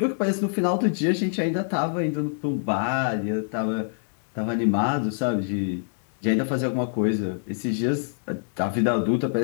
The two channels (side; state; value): right; silent; 61 dB below the other